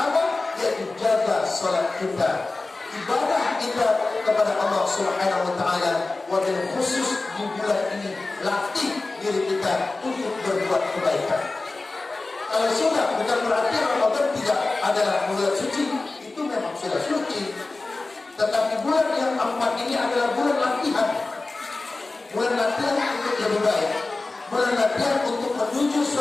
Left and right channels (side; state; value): right; quieter; 3.4 dB